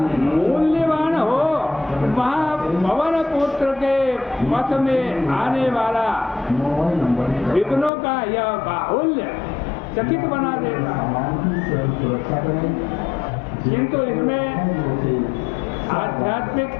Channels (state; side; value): drops out; right; at 7.9 s